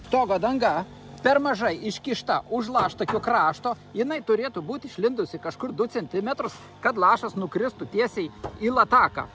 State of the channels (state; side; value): identical; both; correlation 1.00